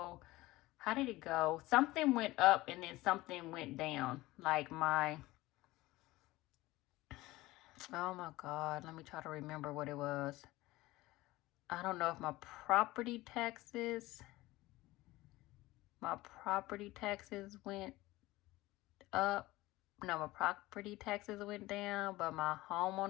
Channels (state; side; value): quieter; right; 18.9 dB